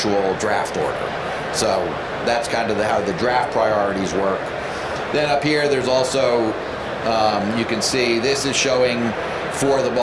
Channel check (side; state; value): both; identical; correlation 1.00